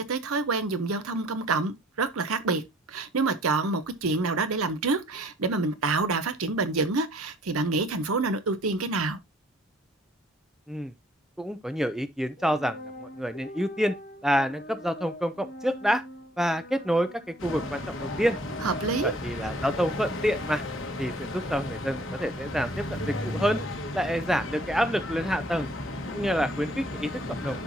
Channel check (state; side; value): normal; both; correlation 0.59